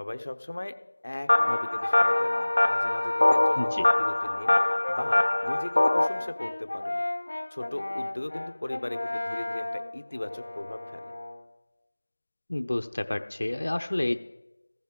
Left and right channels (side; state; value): both; inverted; correlation -1.00